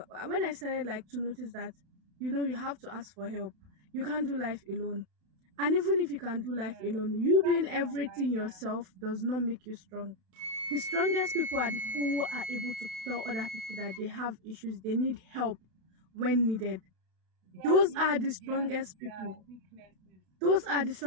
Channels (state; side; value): late; left; 32 ms